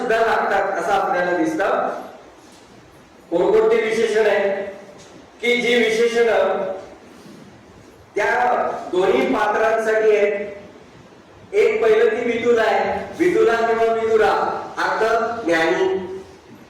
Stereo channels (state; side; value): identical; both; correlation 1.00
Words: लागतात असं आपल्याला दिसतं. कोणकोणती विशेषण आहे की जी विशेषणं त्या दोन्ही पात्रांसाठी आहेत. एक पहिलं ती विदुला आहे, विदुला किंवा विदुरा अर्थ ज्ञानी.